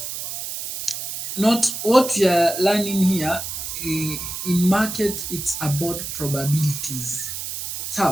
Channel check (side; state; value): right; noise; hiss, 6 dB below the sound